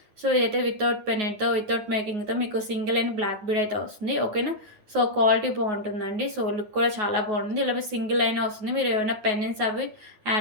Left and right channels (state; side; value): late; left; 9.4 ms